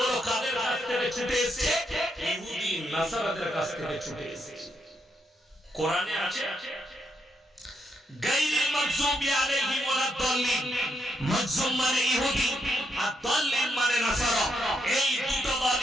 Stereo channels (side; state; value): both; normal; correlation 0.79